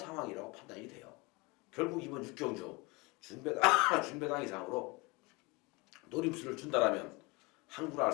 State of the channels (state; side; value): quieter; right; 26.2 dB